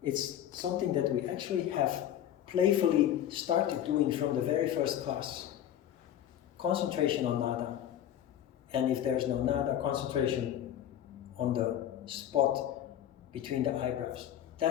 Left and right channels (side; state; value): right; quieter; 10.8 dB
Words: It's something that we actually have playfully started doing from the very first class. Concentration on nada. And if there's no nada, concentration on the spot between the eyebrows.